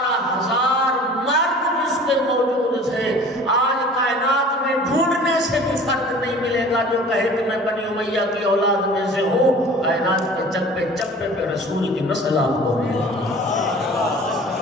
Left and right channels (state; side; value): normal; both; correlation 0.45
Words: مرد جس کے موجود تھے، آج کائنات میں ڈھونڈنے سے بھی فرق نہیں ملے گا جو کہے کہ میں بنی امیہ کی اولاد میں سے ہوں۔ کائنات کے چپے چپے پہ رسول کی نسل آپ کو ملے گی۔